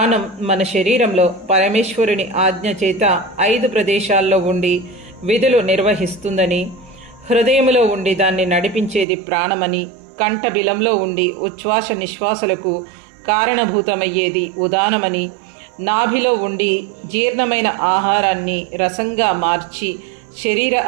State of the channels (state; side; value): drops out; left; at 9.1 s